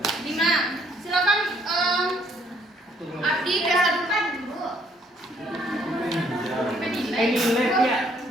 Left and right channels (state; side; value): normal; both; correlation 0.66